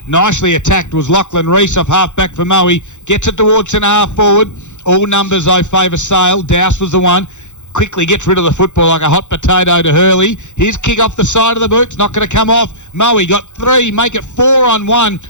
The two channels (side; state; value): right; late; 0.84 ms